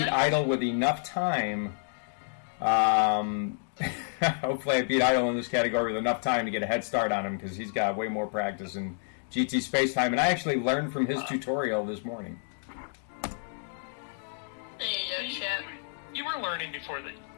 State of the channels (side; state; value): right; silent; digital silence